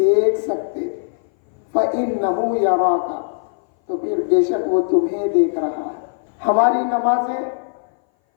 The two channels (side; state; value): right; silent; 60 dB below the other